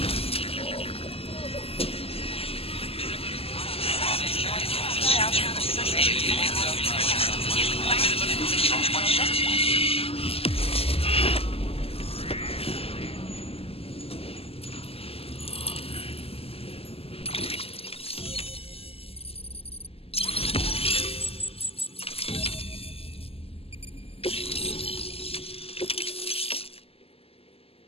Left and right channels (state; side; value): late; right; 0.28 ms